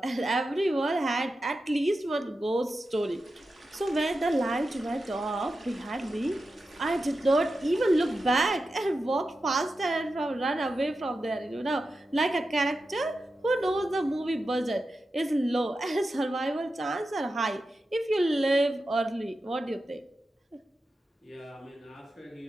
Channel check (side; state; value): both; normal; correlation 0.91